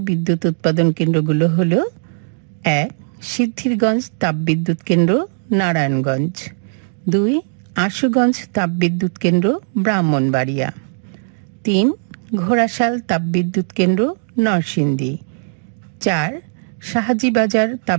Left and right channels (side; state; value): left; silent; digital silence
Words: বিদ্যুৎ উৎপাদন কেন্দ্রগুলো হল: 1. সিদ্ধিরগঞ্জ তাপবিদ্যুৎ কেন্দ্র, নারায়ণগঞ্জ। 2. আশুগঞ্জ তাপবিদ্যুৎ কেন্দ্র, ব্রাহ্মণবাড়িয়া। 3. ঘোড়াশাল তাপবিদ্যুৎ কেন্দ্র, নরসিংদী। 4. শাহাজিবাজার